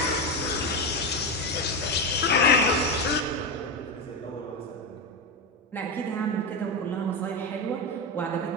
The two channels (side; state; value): both; normal; correlation 0.13